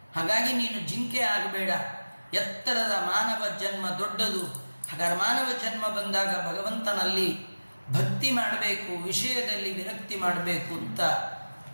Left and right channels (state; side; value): inverted; both; correlation -1.00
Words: ಹಾಗಾಗಿ ನೀನು ಜಿಂಕೆ ಆಗಬೇಡ. ಎತ್ತರದ ಮಾನವ ಜನ್ಮ ದೊಡ್ಡದು. ಹಾಗಾದ್ರೆ ಮಾನವ ಜನ್ಮ ಬಂದಾಗ ಭಗವಂತನಲ್ಲಿ ಭಕ್ತಿ ಮಾಡಬೇಕು, ವಿಷಯದಲ್ಲಿ ವಿರಕ್ತಿ ಮಾಡಬೇಕು ಅಂತ